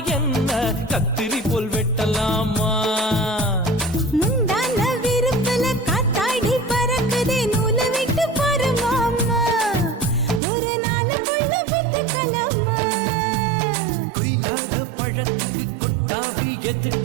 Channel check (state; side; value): drops out; left; at 10.4 s